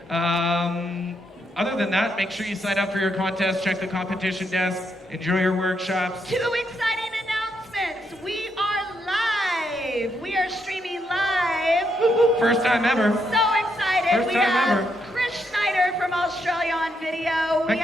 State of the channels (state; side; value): normal; both; correlation 0.78